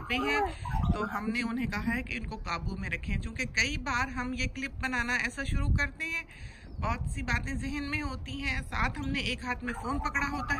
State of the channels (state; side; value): identical; both; correlation 1.00